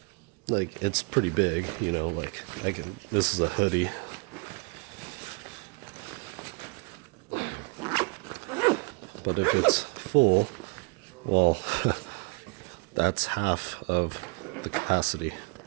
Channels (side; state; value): left; quieter; 31.8 dB